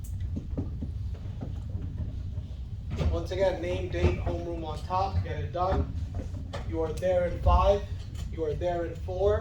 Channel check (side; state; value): both; identical; correlation 1.00